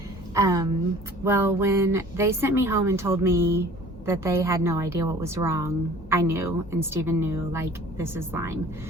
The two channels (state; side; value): normal; both; correlation 0.48